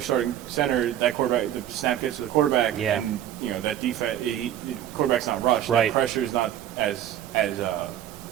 starting center, that quarterback, the snap gets to the quarterback, and that defense, the quarterback's not rushed. Right. That pressure is not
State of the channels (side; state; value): left; quieter; 11.3 dB